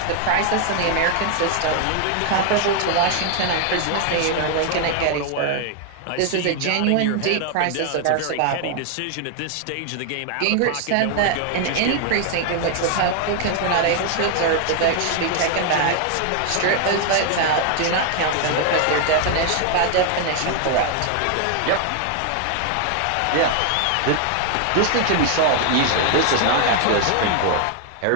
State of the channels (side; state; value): both; different; correlation 0.00